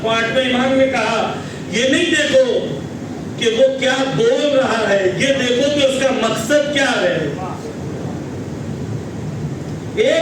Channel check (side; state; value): both; identical; correlation 1.00